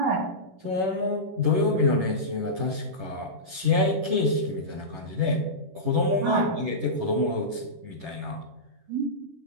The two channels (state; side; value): late; left; 11 ms